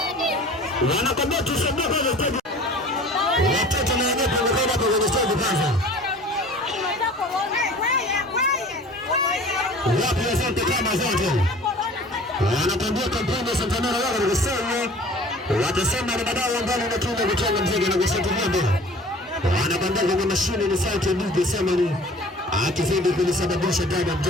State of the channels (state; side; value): normal; both; correlation 0.46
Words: Wanakwambia tusambuke kwanza studio. Watoto na wenyewe wanakwenda hapo kwenye studio kwanza. Wapi asante kama zote. Wanakwambia kampuni ya Santanera wao wanasema watasema ni badala ambao wanatumia kutoka mziki na kusaidia mbele. Wanakwambia kwa mashine ni sauti ndio sema ni akizidi kulisababisha damu